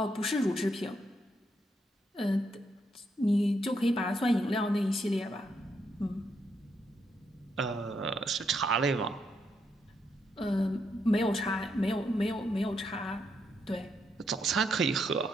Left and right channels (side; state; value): both; normal; correlation 0.78